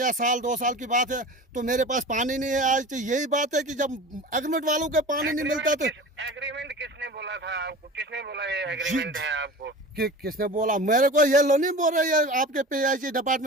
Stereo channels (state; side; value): normal; both; correlation 0.35